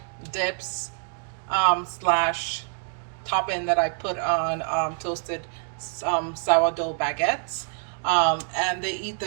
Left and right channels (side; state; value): left; silent; digital silence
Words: dips slash topping that I put on toasted sourdough baguettes. And they eat